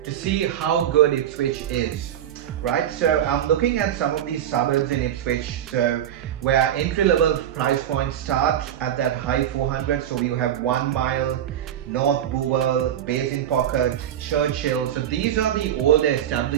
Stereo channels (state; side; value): quieter; left; 10.5 dB